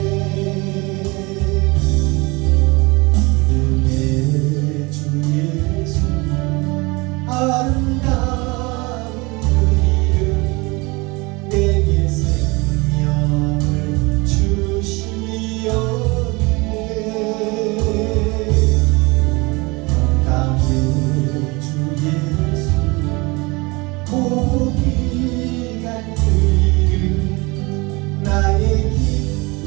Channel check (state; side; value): quieter; left; 25.5 dB